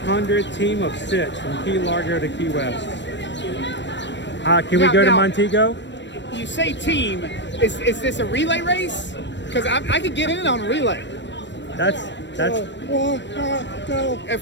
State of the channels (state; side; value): late; right; 0.52 ms